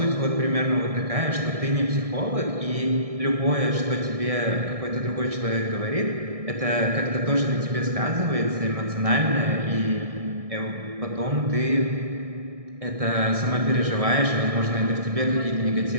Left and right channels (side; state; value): left; late; 1.6 ms